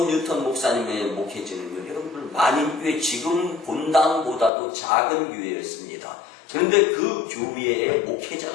뉴턴 목사님의 목회지는요, 여러분들 만인교회 지금 본당보다도 작은 교회였습니다. 그런데 그 교회에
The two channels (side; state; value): right; drops out; at 4.5 s